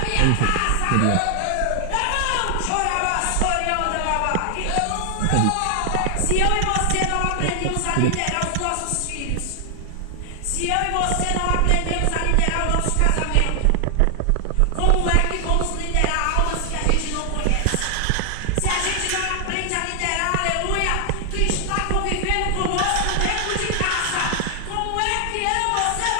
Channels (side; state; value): both; different; correlation 0.00